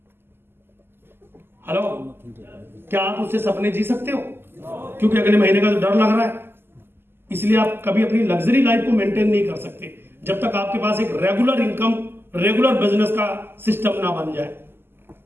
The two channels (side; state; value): left; late; 0.11 ms